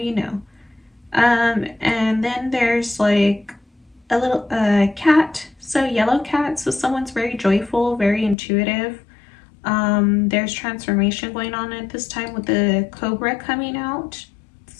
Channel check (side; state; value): right; drops out; at 8.3 s